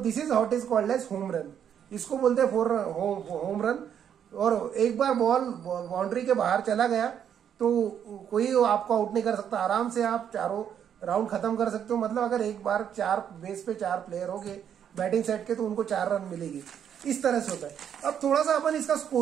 is what is called as home run, इसको बोलते हैं होम रन। और एक बार बॉल बाउंड्री के बाहर चला गया तो कोई आपको आउट नहीं कर सकता, आराम से आप चारों राउंड खत्म कर सकते हो। मतलब अगर एक बार 4 बेस पे 4 प्लेयर हो गए बैटिंग साइड के तो उनको 4 रन मिलेगी, इस तरह से होता है। अब थोड़ा सा अपन इसका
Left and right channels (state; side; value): quieter; left; 8.8 dB